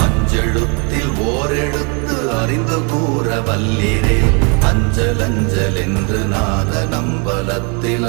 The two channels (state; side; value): quieter; left; 34.5 dB